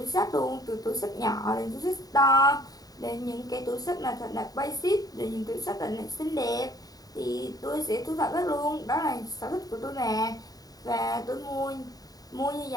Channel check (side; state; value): right; late; 0.18 ms